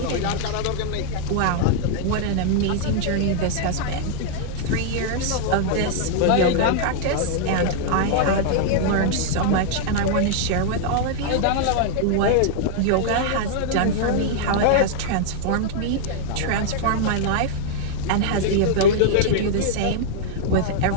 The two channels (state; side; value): different; both; correlation -0.01